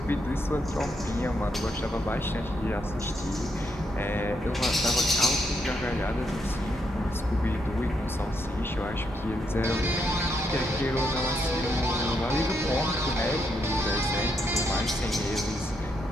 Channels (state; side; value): normal; both; correlation 0.78